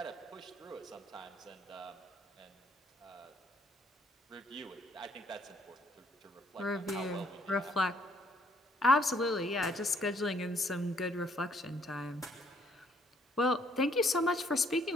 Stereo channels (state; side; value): normal; both; correlation 0.66